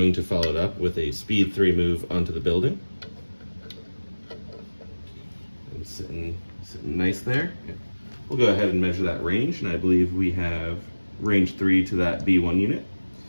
to follow it up with a speed 3 move onto the building. And sitting nice there. We'll go ahead and measure that range, and I believe we have range 3 to that B1 unit.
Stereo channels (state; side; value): inverted; both; correlation -1.00